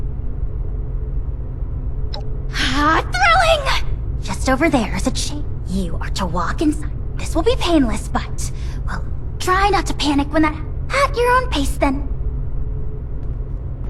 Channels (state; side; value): identical; both; correlation 1.00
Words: Thrilling! Just over there is a chain. You are to walk inside. This will be painless, but, well, try not to panic when that... At your own pace, then.